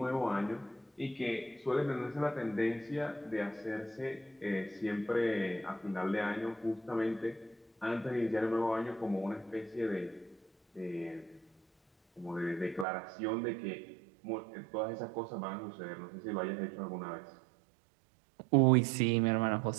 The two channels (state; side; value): drops out; left; at 12.9 s